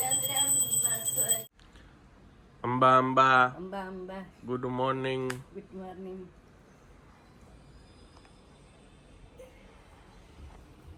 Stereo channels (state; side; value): identical; both; correlation 1.00